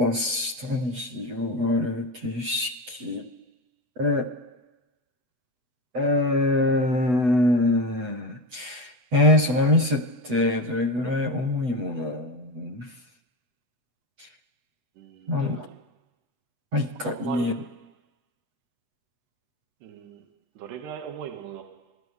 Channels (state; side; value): late; left; 8.1 ms